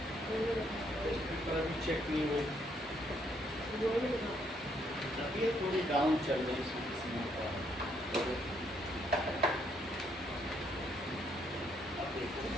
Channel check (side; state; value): both; normal; correlation 0.72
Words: चेक नहीं हुई, तभी थोड़ी डाउन चल रही है इसमें का। अब देखो